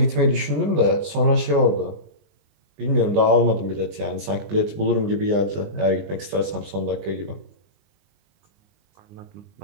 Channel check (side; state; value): left; late; 19 ms